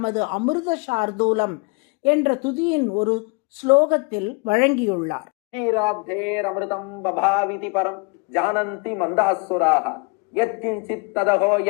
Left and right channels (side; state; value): right; quieter; 31.4 dB